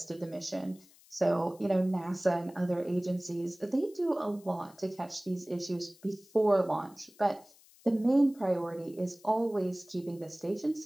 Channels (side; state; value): left; noise; hiss, 26 dB below the sound